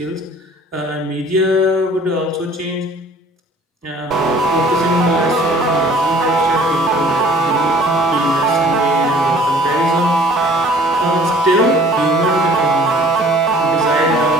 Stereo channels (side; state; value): both; normal; correlation 0.52